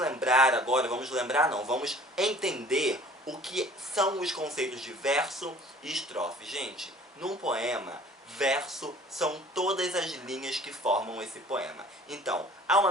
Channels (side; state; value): both; normal; correlation 0.50